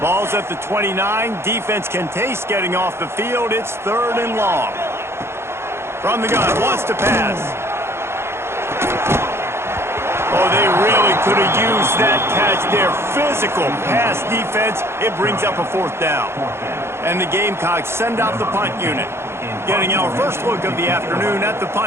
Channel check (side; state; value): left; late; 0.12 ms